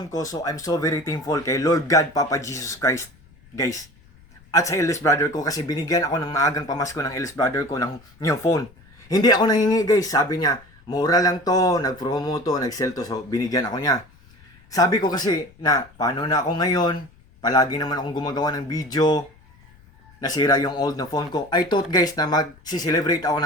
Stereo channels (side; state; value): left; noise; rumble, 27 dB below the sound